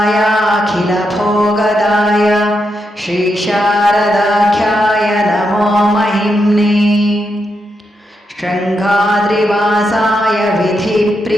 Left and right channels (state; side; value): normal; both; correlation 0.83